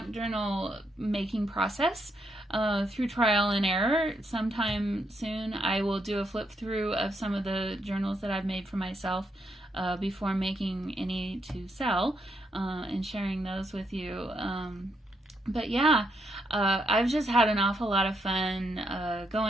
journal making process through trial and error. Sometime soon I will do a flip through of some of the journals that I've made for myself before making any to sell and sharing those with you. But yeah, I've just had an awful lot of fun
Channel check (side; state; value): both; normal; correlation 0.78